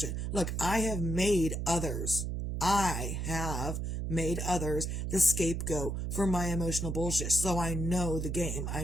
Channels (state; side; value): noise; right; hum, 2 dB below the sound